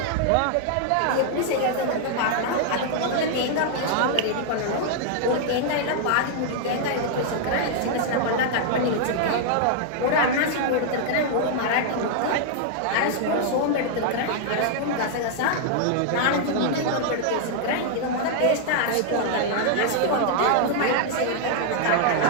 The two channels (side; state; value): both; different; correlation -0.01